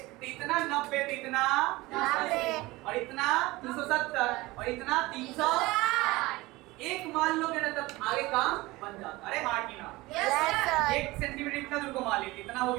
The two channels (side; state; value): left; quieter; 20.6 dB